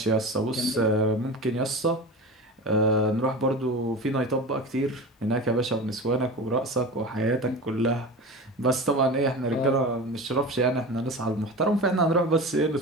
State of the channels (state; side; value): normal; both; correlation 0.30